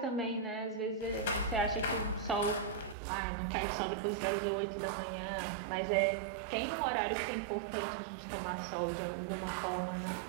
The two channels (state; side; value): drops out; left; at 3.0 s